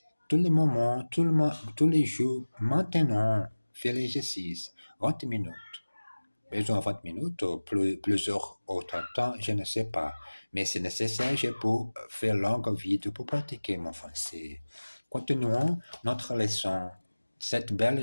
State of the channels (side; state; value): both; inverted; correlation -1.00